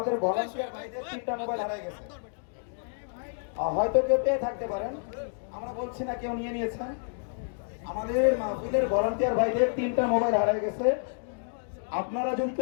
ভলান্টিয়ার ভাইদের 3টা মোবাইল হারিয়ে গেছে। হয়তো কেউ পেয়ে থাকতে পারেন, আমরা বলছি না কেউ নিয়ে নিয়েছেন। আমাদের মাহফিলের ভলান্টিয়ার ভাইদের 3টা মোবাইল হারিয়ে গেছে। আপনারা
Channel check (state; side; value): silent; right; digital silence